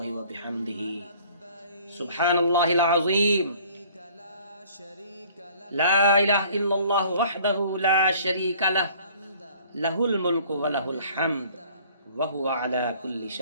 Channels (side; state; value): both; inverted; correlation -0.54